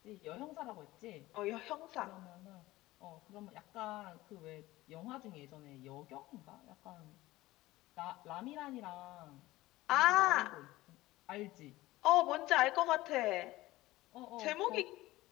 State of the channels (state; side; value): quieter; right; 18.0 dB